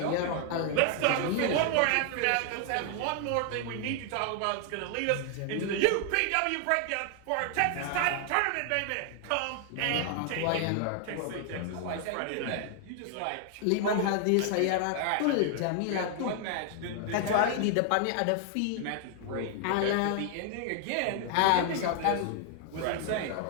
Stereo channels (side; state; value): both; different; correlation 0.00